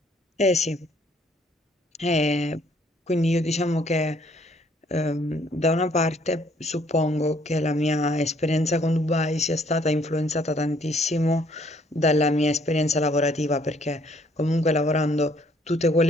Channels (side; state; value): both; normal; correlation 0.64